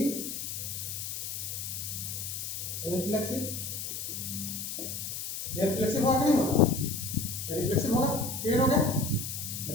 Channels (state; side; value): noise; left; hiss, 5 dB below the sound